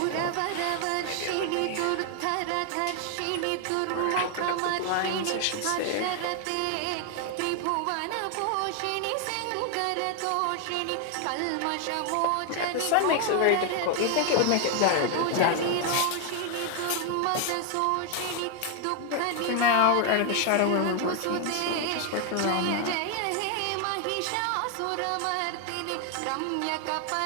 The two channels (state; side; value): different; both; correlation 0.00